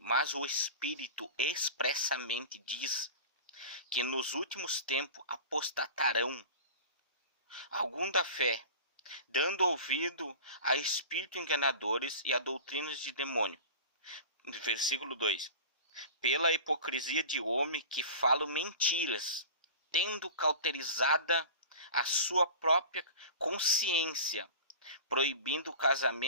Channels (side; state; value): both; inverted; correlation -0.36